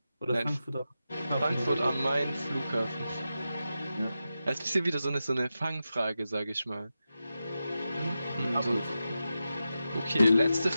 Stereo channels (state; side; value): inverted; both; correlation -0.91